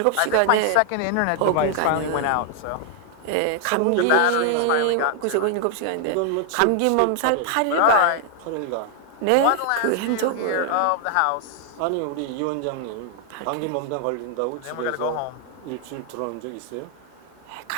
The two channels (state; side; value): different; both; correlation 0.00